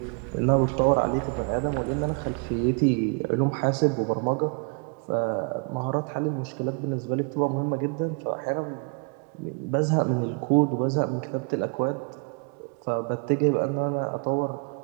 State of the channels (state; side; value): quieter; left; 36.2 dB